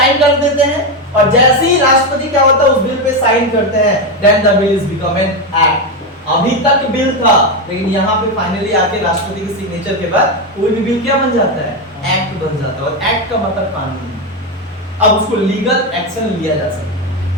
कर देते हैं, और जैसे ही राष्ट्रपति क्या होता है उस बिल पे साइन करते हैं, then the bill is become an act. अभी तक बिल था, लेकिन यहाँ पे फाइनली आके राष्ट्रपति के सिग्नेचर के बाद कोई भी बिल क्या बन जाता है? एक्ट बन जाता है। और एक्ट का मतलब कानून। अब उसको लीगल एक्शन लिया जा सकता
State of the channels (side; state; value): both; normal; correlation 0.10